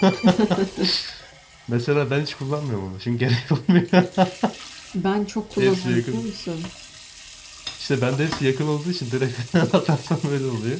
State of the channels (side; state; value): both; identical; correlation 1.00